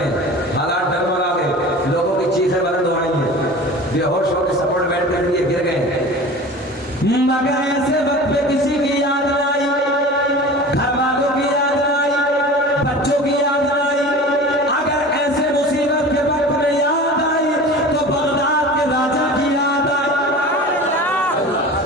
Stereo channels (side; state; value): both; normal; correlation 0.37